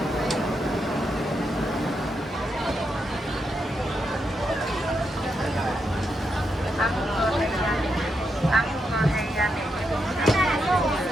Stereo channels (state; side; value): normal; both; correlation 0.83